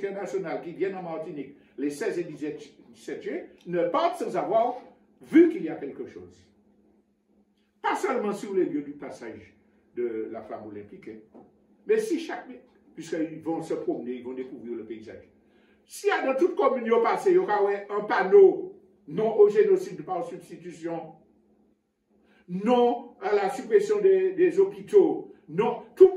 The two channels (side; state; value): both; identical; correlation 1.00